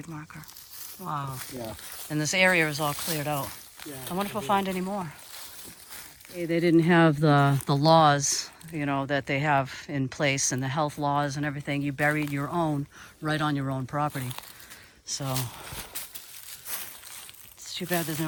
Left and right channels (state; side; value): identical; both; correlation 1.00